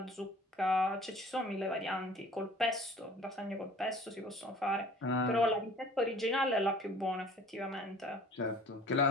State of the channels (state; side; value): normal; both; correlation 0.49